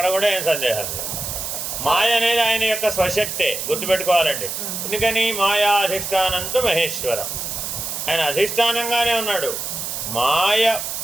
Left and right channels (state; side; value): noise; right; hiss, 5 dB below the sound